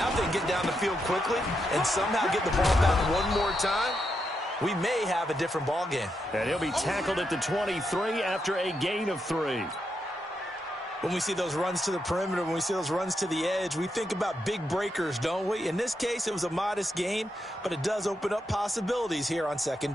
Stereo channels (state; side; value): normal; both; correlation 0.83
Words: if they can get down the field quickly and somehow get the ball back one more time, we may have a different ball game. And he'll be tackled at the 23 after a gain of 3. When we see those runs to the perimeter, when we see those runs to the edge, we think about big breakers, don't we? In this case, it was a modest gain, but it does open up possibilities here on 2nd